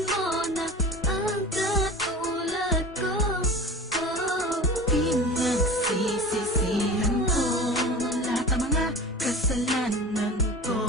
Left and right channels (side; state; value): both; normal; correlation 0.35